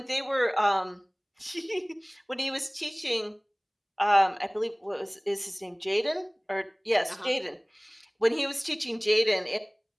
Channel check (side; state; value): both; identical; correlation 1.00